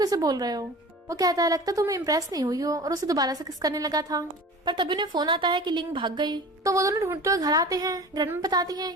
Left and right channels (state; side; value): normal; both; correlation 0.38